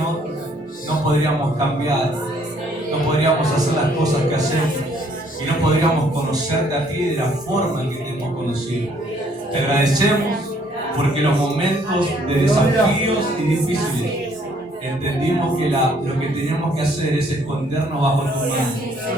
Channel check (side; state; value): both; normal; correlation 0.64